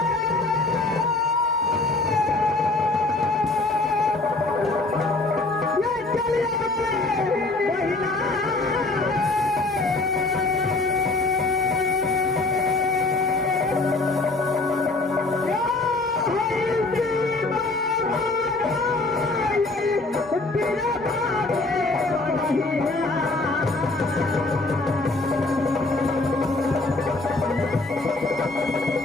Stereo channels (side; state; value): right; quieter; 3.2 dB